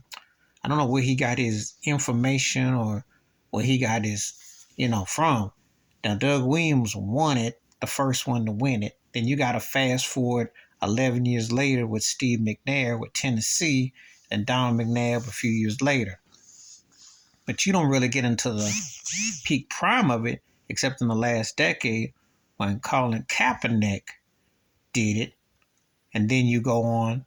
I don't know where he got his information or where he got his, from. Now, Doug Williams won it, the first one to win it. Then you got to fast forward 11 years later with Steve McNair with Tennessee and Don McNabb a few years later. But you don't really get into the peak prime of it except in the last decade when Colin Kaepernick did it. And then you go on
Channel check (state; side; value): identical; both; correlation 1.00